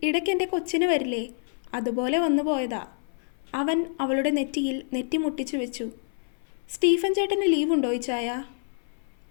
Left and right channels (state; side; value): silent; right; 60 dB below the other